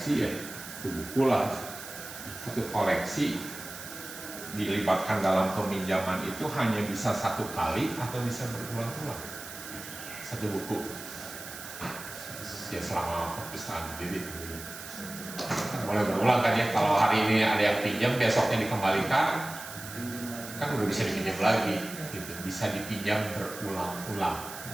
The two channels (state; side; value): noise; right; hiss, 12 dB below the sound